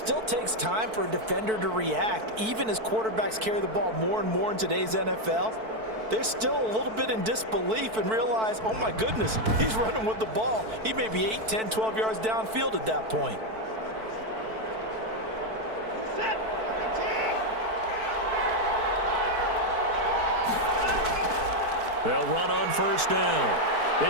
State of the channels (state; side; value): late; left; 4.5 ms